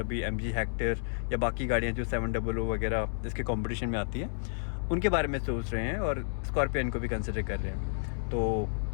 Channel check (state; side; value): silent; right; 57 dB below the other